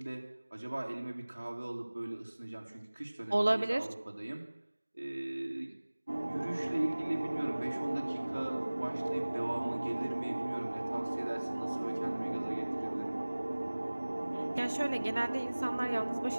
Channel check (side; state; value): both; inverted; correlation -1.00